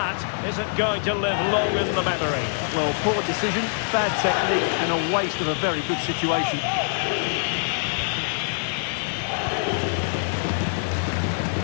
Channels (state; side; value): silent; right; 58 dB below the other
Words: isn't going to live long in the memory. Well, poor decision, bad technique, and a waste of a very good situation.